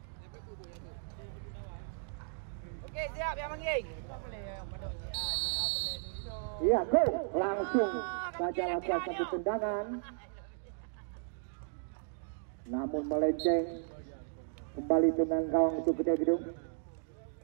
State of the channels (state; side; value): silent; left; digital silence